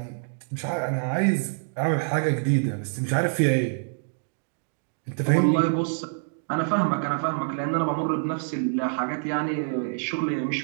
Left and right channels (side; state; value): left; silent; digital silence